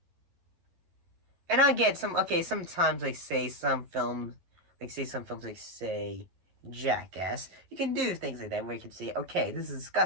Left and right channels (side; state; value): left; late; 11 ms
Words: And I get sometimes, like, say, some films, like, say, Jackass, you can do things like that where you can say, okay, this is